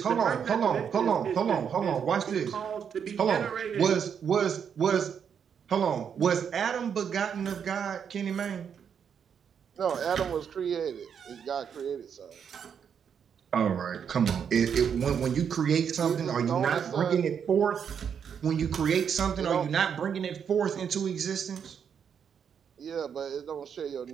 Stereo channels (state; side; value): quieter; left; 7.5 dB